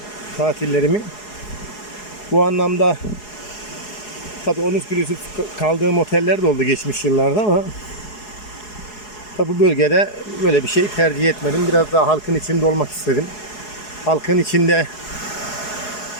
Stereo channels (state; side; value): late; right; 4.8 ms